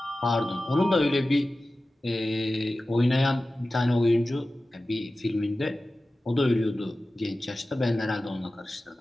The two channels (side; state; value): both; normal; correlation 0.95